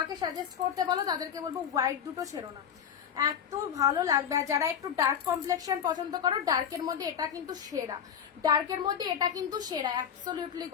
সাজেস্ট করতে বলো, তাদেরকে বলবো হোয়াইট দুটো ছেড়ো না, এত ভালো লাগবে। আর যারা একটু ডার্ক কমপ্লেক্সন পছন্দ করো, ডার্কের মধ্যে এটা কিন্তু সেরা, ডার্কের মধ্যে এটা কিন্তু সেরা, অ্যাবসলিউটলি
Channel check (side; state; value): right; quieter; 8.3 dB